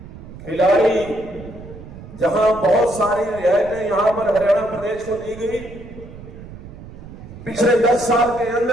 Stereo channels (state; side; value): noise; right; rumble, 15 dB below the sound